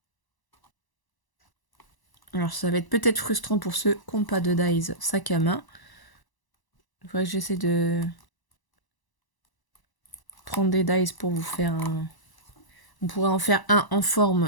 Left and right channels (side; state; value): right; late; 1.0 ms